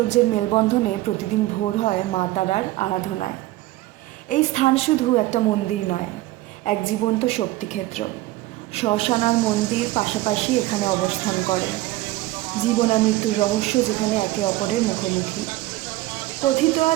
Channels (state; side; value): quieter; left; 17.6 dB